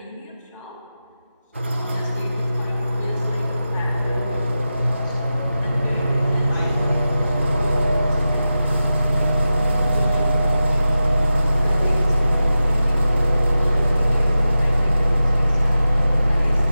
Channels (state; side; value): inverted; both; correlation -0.93